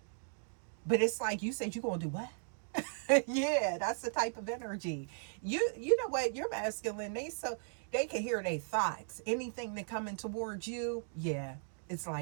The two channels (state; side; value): silent; left; digital silence